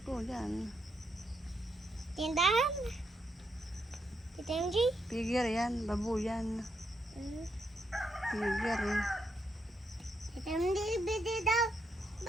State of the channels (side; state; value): both; normal; correlation 0.79